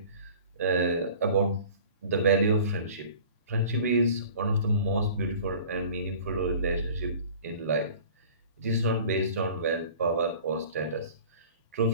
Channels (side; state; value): both; inverted; correlation -0.45